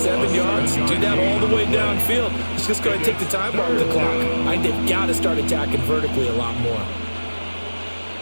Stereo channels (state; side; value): inverted; both; correlation -1.00